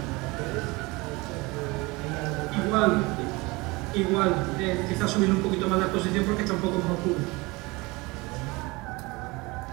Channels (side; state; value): left; quieter; 24.0 dB